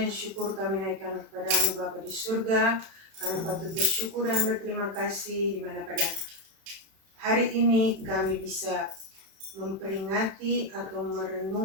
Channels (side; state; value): left; late; 31 ms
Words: syukur kami naikkan kepadamu Bapa di surga. Kami patut bersyukur dan berterima kasih di mana pada hari ini kami bisa memperingati atau